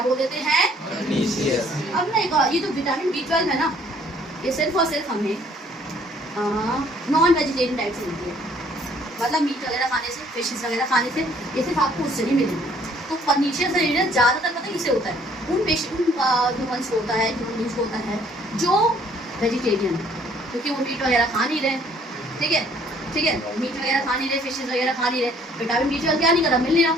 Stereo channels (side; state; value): both; normal; correlation 0.61